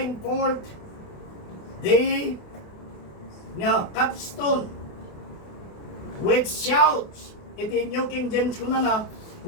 forth the capstone with shouts. Iti New King James ko na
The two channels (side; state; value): right; late; 28 ms